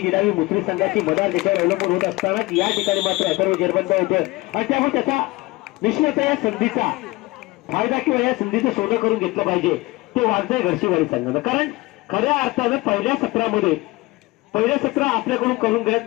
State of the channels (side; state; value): right; quieter; 21.4 dB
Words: निनावी मुसरी संघाची मदार देशावर अवलंबून होत असताना या ठिकाणी मात्र अथर्व जेरबंद होतोय आणि त्यामुळे त्याचा निश्चितच या संधीचा फायदा किंवा या संधीचं सोनं करून घेतलं पाहिजे ते वाघजाई घरशीवाडी संघानं. कारण खऱ्या अर्थानं पहिल्या सत्रामध्ये पहिलं सत्र आपल्याकडून करून